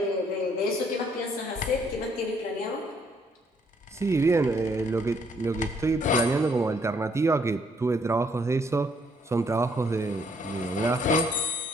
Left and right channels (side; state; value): both; normal; correlation 0.68